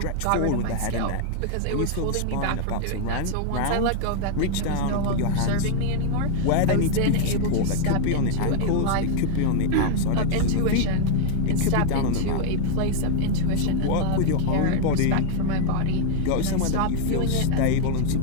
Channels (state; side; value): different; both; correlation 0.00